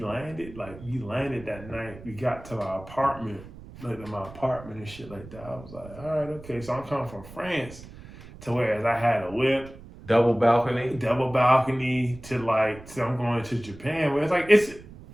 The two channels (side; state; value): right; noise; rumble, 17 dB below the sound